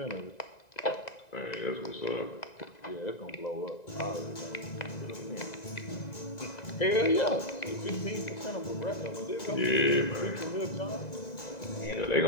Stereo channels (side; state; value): right; late; 1.9 ms